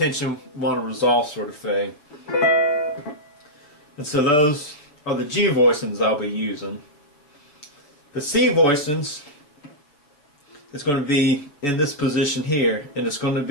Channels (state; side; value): late; right; 7.0 ms